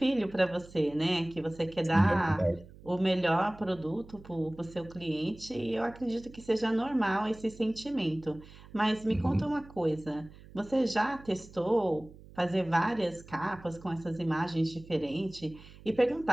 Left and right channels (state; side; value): noise; right; hum, 20 dB below the sound